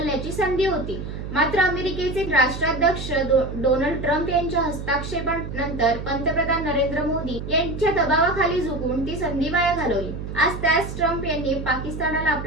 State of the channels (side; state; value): right; noise; hum, 7 dB below the sound